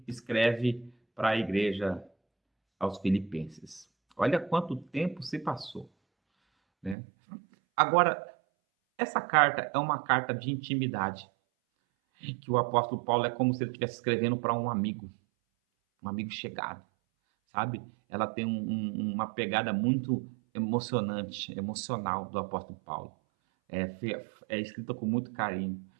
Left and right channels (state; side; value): drops out; left; at 7.0 s